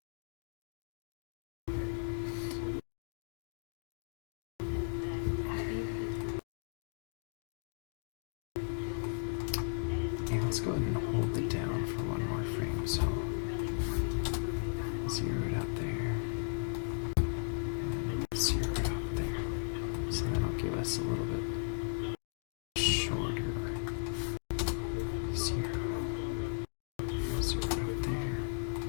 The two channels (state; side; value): silent; right; digital silence